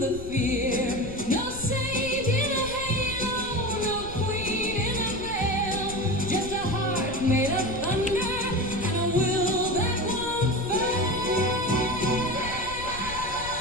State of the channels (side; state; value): left; noise; rumble, 12 dB below the sound